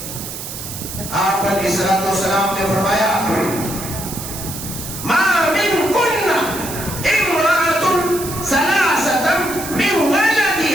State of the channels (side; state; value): right; noise; hiss, 9 dB below the sound